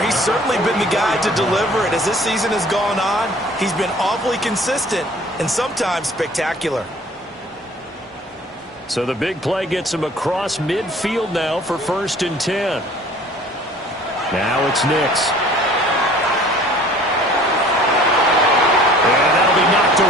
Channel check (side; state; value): both; normal; correlation 0.50